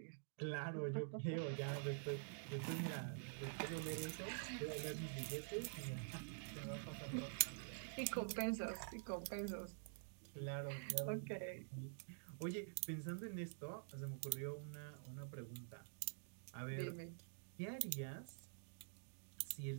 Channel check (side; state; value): left; silent; digital silence